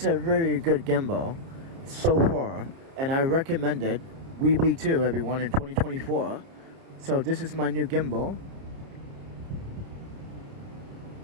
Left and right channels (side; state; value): left; late; 30 ms